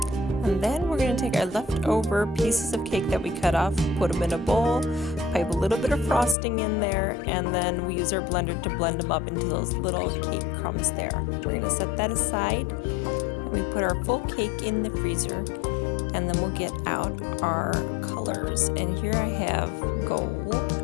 then we're going to take our leftover pieces of cake that we cut off, put them in a bowl, pipe a little bit of frosting in there, and then we use our blender to blend them up into those little cake crumbs there. We're going to set that aside and we put our full cake in the freezer. And then we'll get out our colors. And here I have gold.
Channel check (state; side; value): drops out; right; at 6.4 s